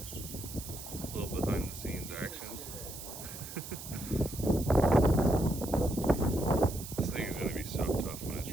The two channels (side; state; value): right; noise; hiss, 11 dB below the sound